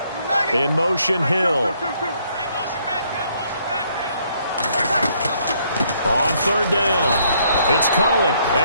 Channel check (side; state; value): both; inverted; correlation -0.68